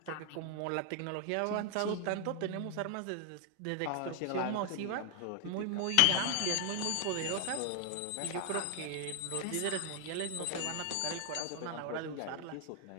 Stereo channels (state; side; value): different; both; correlation 0.00